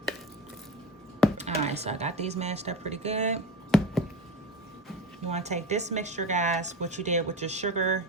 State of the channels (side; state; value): both; normal; correlation 0.27